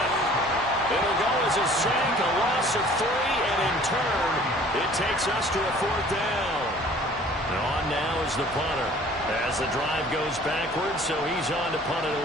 It'll go as a sack, a loss of 3, and in turn, it takes us to a 4th down. And on now is the punter as the drive goes backwards, so he's on to punt it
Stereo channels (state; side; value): normal; both; correlation 0.51